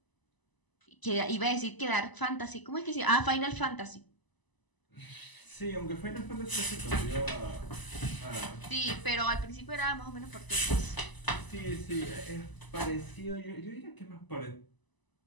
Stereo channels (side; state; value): right; late; 1.0 ms